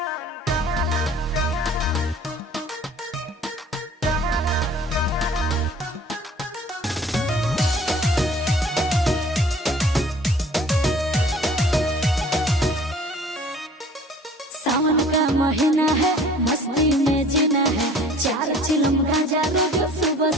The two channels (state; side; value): normal; both; correlation 0.50